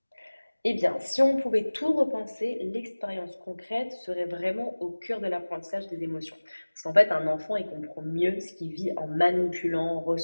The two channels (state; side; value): inverted; both; correlation -1.00